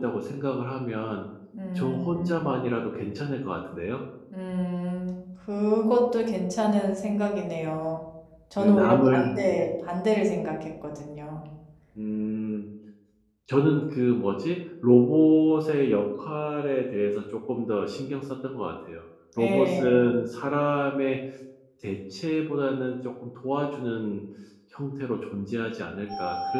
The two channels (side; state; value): both; identical; correlation 1.00